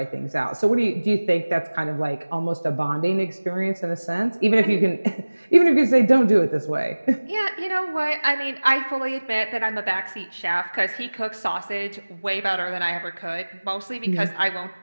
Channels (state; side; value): inverted; both; correlation -1.00